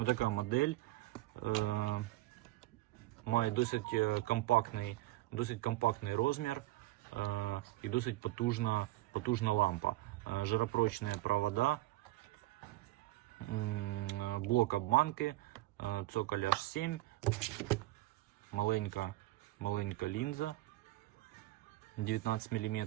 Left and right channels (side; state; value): left; quieter; 17.7 dB